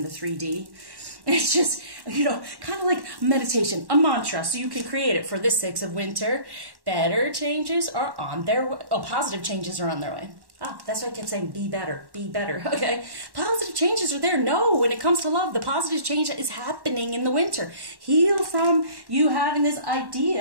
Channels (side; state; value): left; late; 1.1 ms